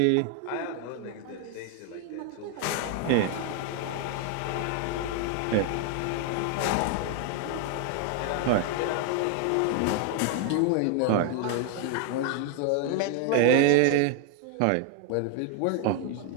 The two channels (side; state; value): both; different; correlation 0.00